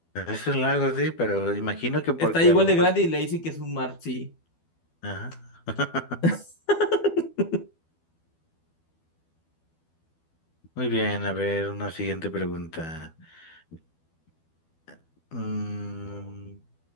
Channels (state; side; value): late; right; 12 ms